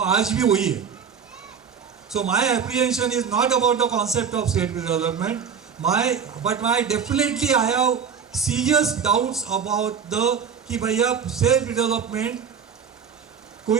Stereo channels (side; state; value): left; quieter; 6.9 dB